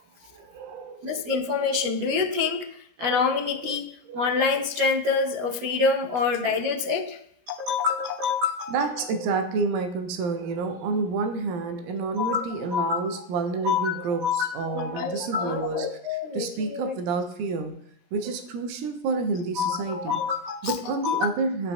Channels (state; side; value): late; left; 17 ms